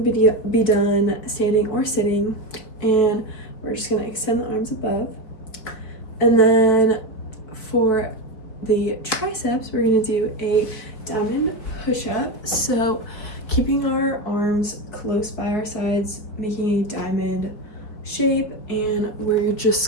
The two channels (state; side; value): late; right; 4.8 ms